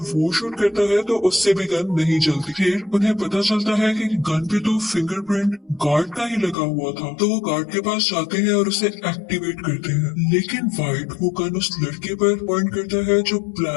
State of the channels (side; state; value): right; drops out; at 6.6 s